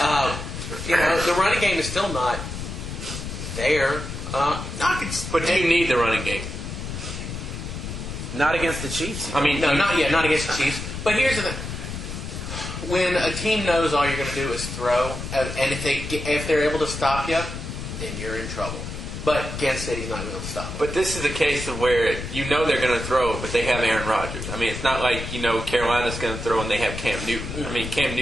The running game is still not there. But do you need the running game? Not against the Chiefs. I mean, not against the Chiefs. But here's the thing. when a team knows all you're going to do is throw, and if they're able to stop you, then you're in trouble. But Kansas City's not going to stop. But this is a case of where you know they're going to throw, but they have Aaron Rodgers. I mean, it's not like Carolina's going to throw and they have Cam Newton. Mm-hmm. I mean, Cam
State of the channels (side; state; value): left; noise; rumble, 7 dB below the sound